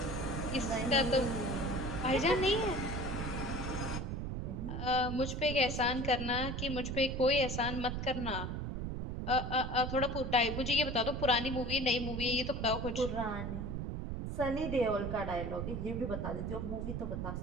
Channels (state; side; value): noise; right; rumble, 4 dB below the sound